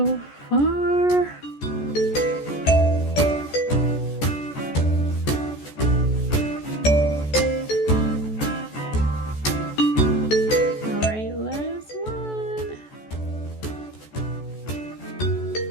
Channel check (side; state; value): right; late; 14 ms